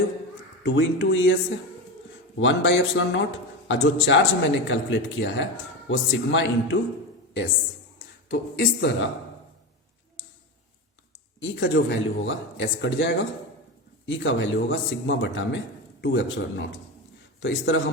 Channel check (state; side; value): normal; both; correlation 0.20